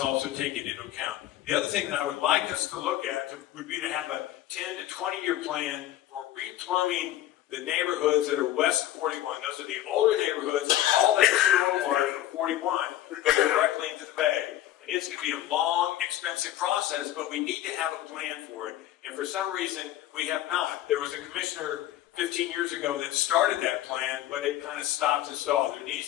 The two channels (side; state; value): right; quieter; 13.4 dB